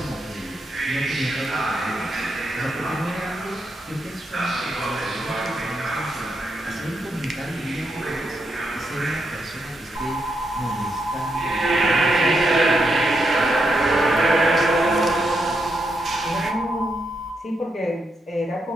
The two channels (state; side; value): normal; both; correlation 0.82